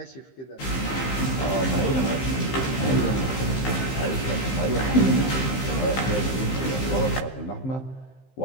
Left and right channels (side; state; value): right; late; 15 ms